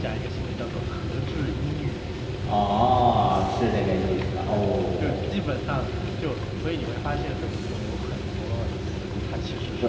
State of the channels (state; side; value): identical; both; correlation 1.00